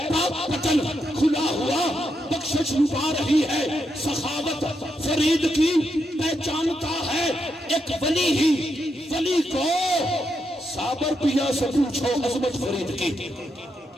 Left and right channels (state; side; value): normal; both; correlation 0.82